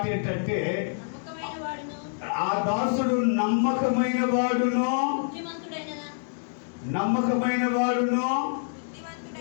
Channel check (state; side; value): silent; right; digital silence